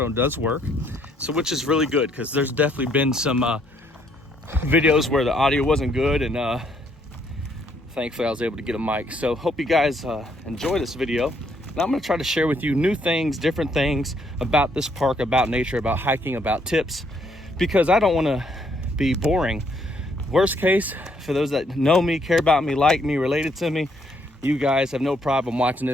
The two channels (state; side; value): normal; both; correlation 0.70